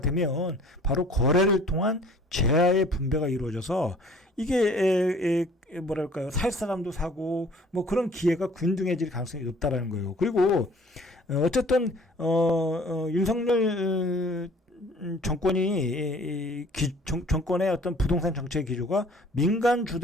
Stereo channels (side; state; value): both; normal; correlation 0.52